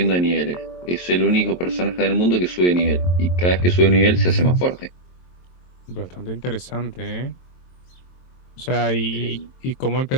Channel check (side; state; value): right; late; 23 ms